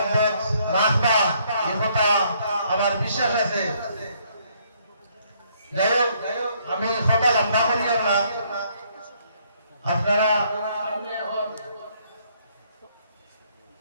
রাখবা, এই কথা আমার বিশ্বাস আছে। যাই হোক, আমি কথা লম্বা করি না, আপনারা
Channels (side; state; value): both; inverted; correlation -0.68